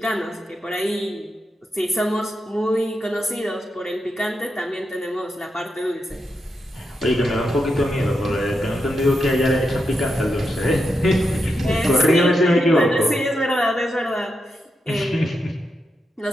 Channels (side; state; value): both; normal; correlation 0.86